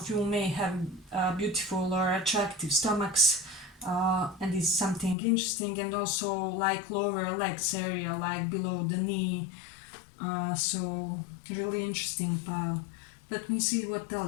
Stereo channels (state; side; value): drops out; right; at 5.2 s